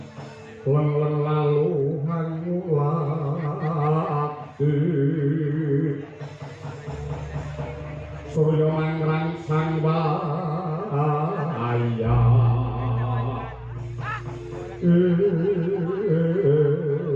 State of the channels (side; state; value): both; identical; correlation 1.00